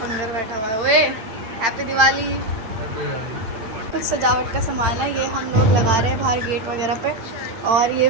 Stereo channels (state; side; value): late; left; 8.8 ms